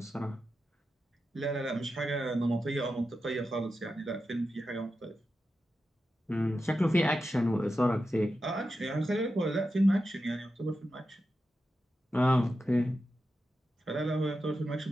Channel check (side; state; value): both; normal; correlation 0.90